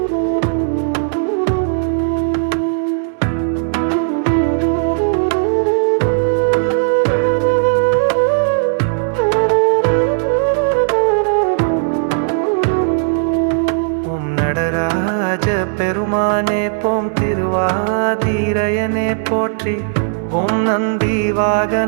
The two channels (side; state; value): left; silent; digital silence